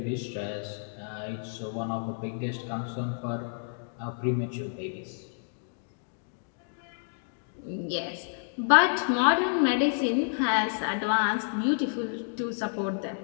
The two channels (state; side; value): silent; right; digital silence